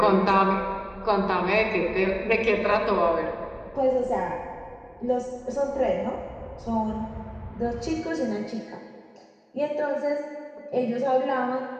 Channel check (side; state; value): both; identical; correlation 1.00